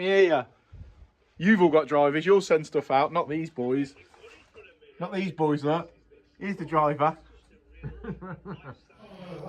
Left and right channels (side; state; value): both; identical; correlation 1.00